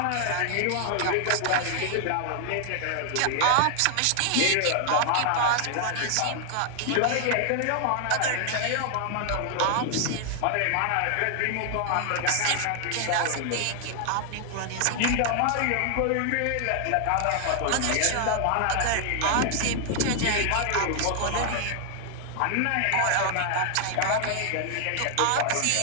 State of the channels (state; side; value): different; both; correlation 0.00